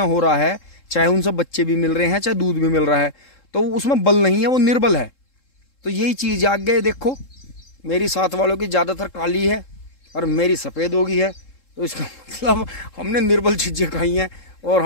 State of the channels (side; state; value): right; late; 3.7 ms